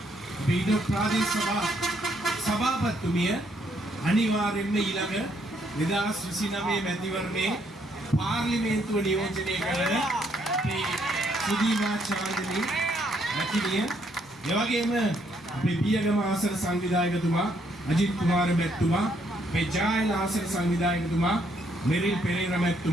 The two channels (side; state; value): both; normal; correlation 0.71